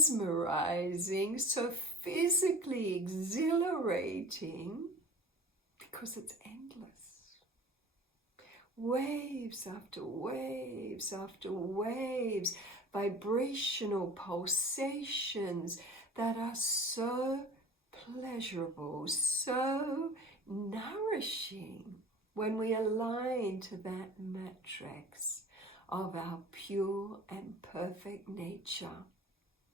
so physically exhilarating, because it's endless. Waves after waves after waves, vibrational pulsations that are so pleasurable, so nourishing when we align to that matrix of our pure and perfect nature.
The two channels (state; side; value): normal; both; correlation 0.41